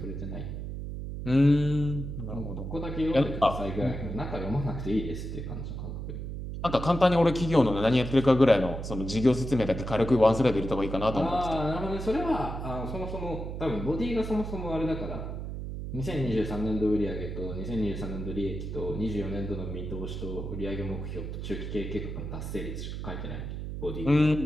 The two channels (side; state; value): right; noise; hum, 6 dB below the sound